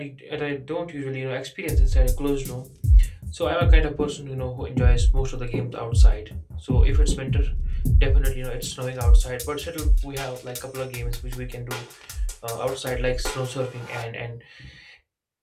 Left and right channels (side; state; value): both; identical; correlation 1.00